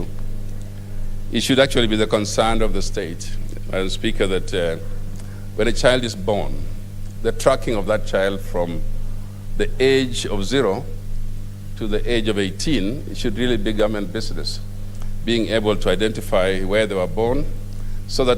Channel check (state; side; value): identical; both; correlation 1.00